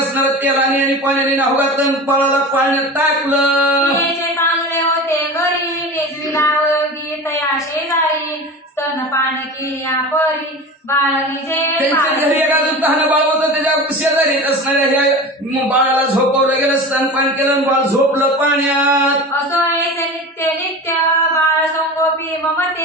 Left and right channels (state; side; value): normal; both; correlation 0.32